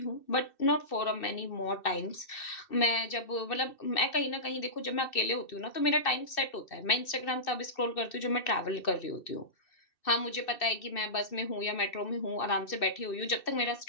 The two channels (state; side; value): late; right; 2.6 ms